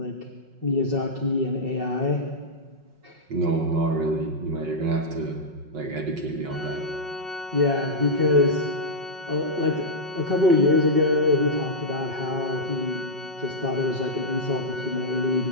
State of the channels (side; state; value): left; late; 5.4 ms